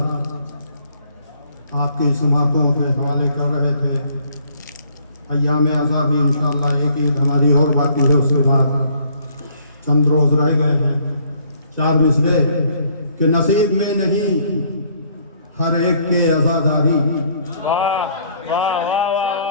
आपकी समातों के हवाले कर रहे थे। अय्याम अज़ाबी इंशाअल्लाह एक ईद हमारी और बाकी है, उसके बाद चंद रोज़ रह गए हैं। चार मिसरे कि नसीब में नहीं हर एक के अज़ादारी,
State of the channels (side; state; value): both; inverted; correlation -0.63